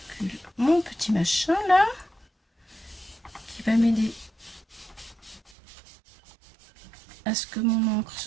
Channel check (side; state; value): left; drops out; at 5.6 s